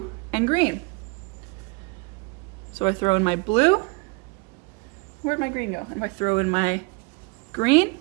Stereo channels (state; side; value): quieter; left; 29.4 dB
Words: and green. So I throw in my blue. Where'd my green go? And if I throw in my green,